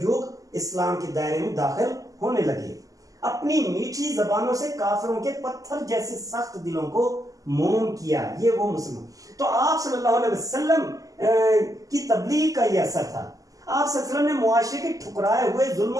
जुग इस्लाम के दायरे में दाखिल होने लगे। अपनी मीठी जबानों से काफिरों के पत्थर जैसे सख्त दिलों को मोम किया, ये वो मुसलमान। तो आप सल्लल्लाहु अलैहि वसल्लम की तबलीग का यह असर था। आप सल्लल्लाहु अलैहि वसल्लम ने मुआशरे के ठुकराए हुए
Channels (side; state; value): left; late; 0.17 ms